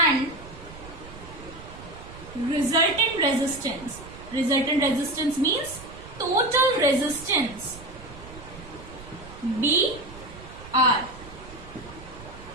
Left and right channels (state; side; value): noise; right; rumble, 17 dB below the sound